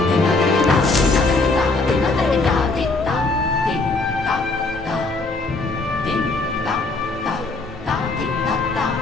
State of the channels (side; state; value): right; quieter; 3.4 dB